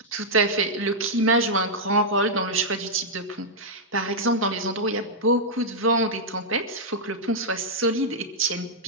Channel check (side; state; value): both; normal; correlation -0.06